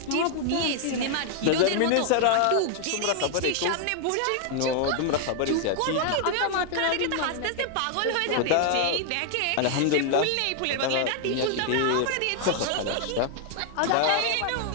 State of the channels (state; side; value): different; both; correlation 0.00